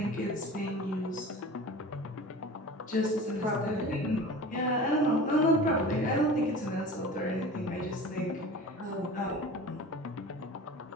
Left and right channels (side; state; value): both; normal; correlation 0.37